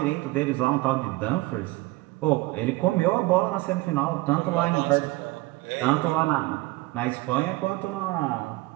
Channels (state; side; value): quieter; left; 20.4 dB